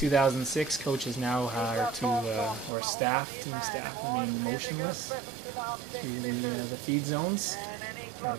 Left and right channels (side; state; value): left; drops out; at 2.7 s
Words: coaches now are or team staff remain motionless through the feed zones. A